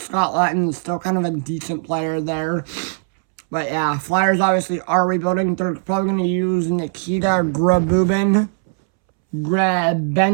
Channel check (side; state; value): left; silent; 66 dB below the other